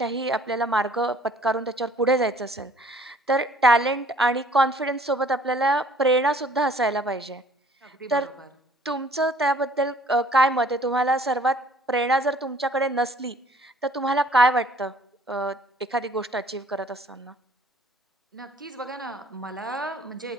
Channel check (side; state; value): both; normal; correlation 0.56